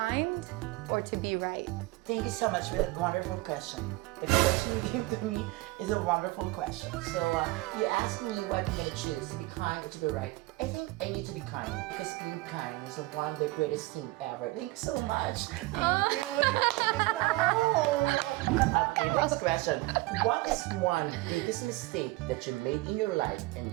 or to be right? Thank you so much for that wonderful question. The question you gave to me is a wonderful question. So you asked me what I'm gonna choose, to be kind or to be right. I think I need to be kind because being kind is one of the greatest thing ever. Thank you so much. Thank you. No. Okay, next question. What is one biggest mistake that you made in your life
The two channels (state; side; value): quieter; left; 20.8 dB